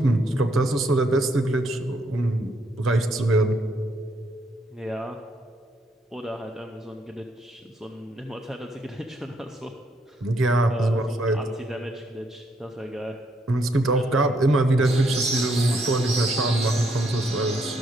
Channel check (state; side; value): normal; both; correlation 0.73